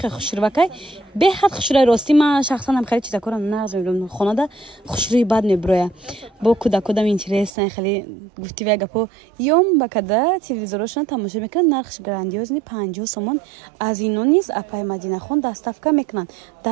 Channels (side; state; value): left; drops out; at 7.5 s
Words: хел хушрувакай беҳад хушрӯи ростӣ ман шахсан ҳам хеле чизакора нағз мебинам хонада хушрӯи бад меброя бо кудакодам интересен хеле гуфтивая гапо ём ба када телевизорошон тамошо мекунад нархш грандиозни 50 сомон аз ино низ апай Мадинахон доставка мекунанд